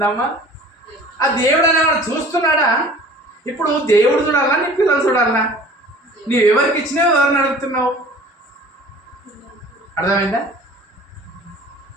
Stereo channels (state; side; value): normal; both; correlation 0.46